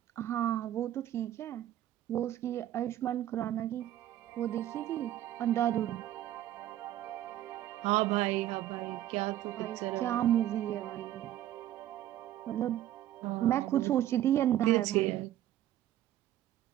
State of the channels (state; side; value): quieter; left; 12.8 dB